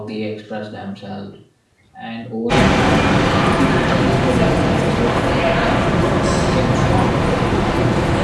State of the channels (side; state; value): both; identical; correlation 1.00